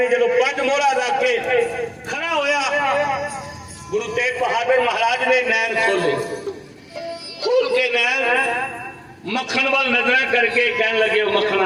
जो 5 मोहरा रख के खड़ा होया, गुरु तेग बहादुर महाराज ने नैन खोले, खोल के नैन मक्खन वाल नजर करके कहने लगे,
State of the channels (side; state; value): both; identical; correlation 1.00